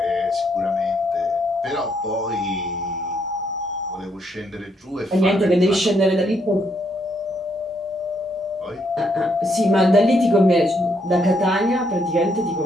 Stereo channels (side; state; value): both; normal; correlation 0.74